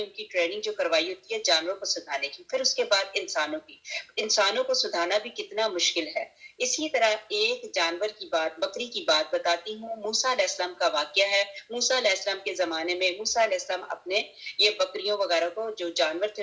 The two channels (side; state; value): both; identical; correlation 1.00